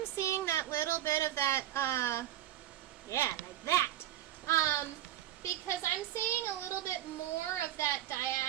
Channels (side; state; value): left; quieter; 12.8 dB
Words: seeing that little bit of that, yeah, like that. Because I'm seeing a little bit more of that